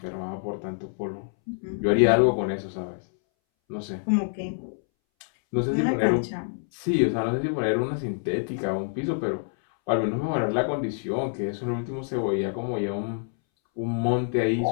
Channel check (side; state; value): right; silent; 61 dB below the other